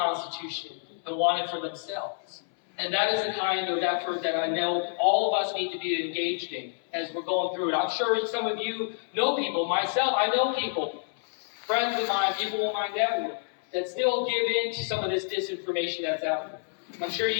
and want it for themselves. And that is the kind of effort that I know all of us need to be engaged in as we're going through it. I'm sure some of you know people, myself, I know people, friends of mine, people in my network, that still give in to some of this disinformation that's out there. I'm sure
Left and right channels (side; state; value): right; silent; 59 dB below the other